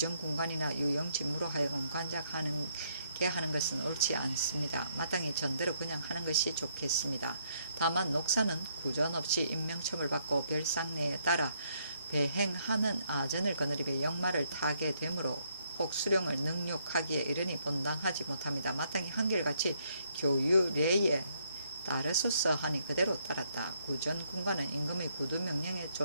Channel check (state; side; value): inverted; both; correlation -0.72